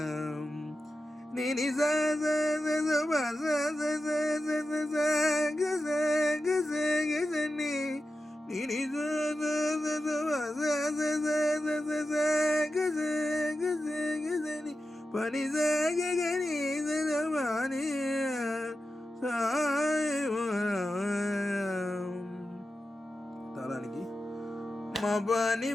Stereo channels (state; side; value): normal; both; correlation 0.92